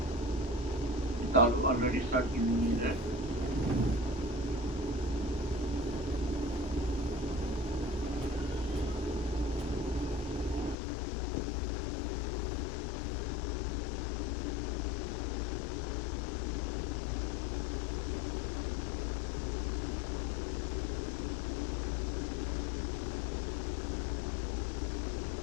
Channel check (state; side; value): drops out; right; at 10.8 s